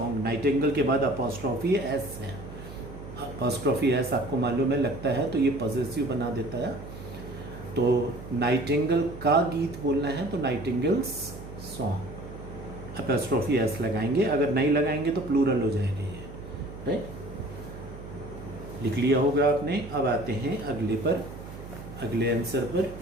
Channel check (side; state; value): right; noise; hum, 13 dB below the sound